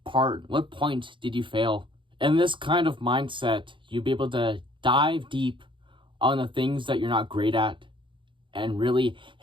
point did you fail? In this kind of mindset, you'll be able to dive deep on the things that you're not great at and really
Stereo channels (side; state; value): left; late; 0.24 ms